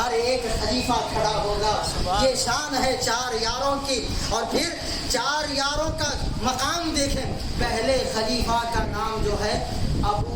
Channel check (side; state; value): both; identical; correlation 1.00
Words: ایک خلیفہ کھڑا ہوگا. یہ شان ہے 4 یاروں کی. اور پھر 4 یاروں کا مقام دیکھیں. پہلے خلیفہ کا نام جو ہے